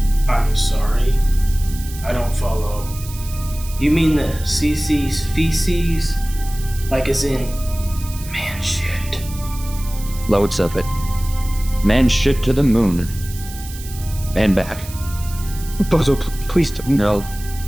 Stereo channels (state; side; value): noise; right; hiss, 15 dB below the sound